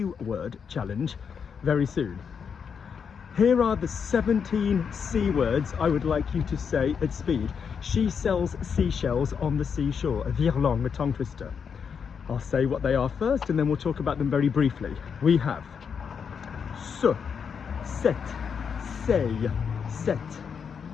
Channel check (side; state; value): right; quieter; 6.6 dB